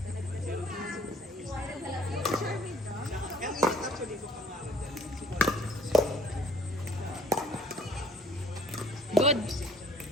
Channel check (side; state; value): both; normal; correlation 0.58